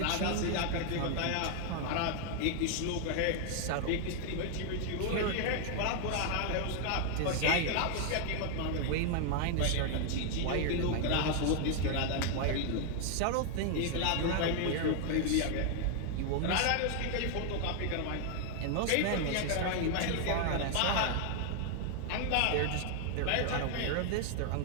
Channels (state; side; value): different; both; correlation 0.00